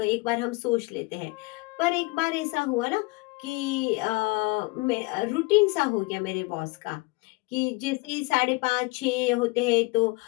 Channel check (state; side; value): quieter; right; 25.1 dB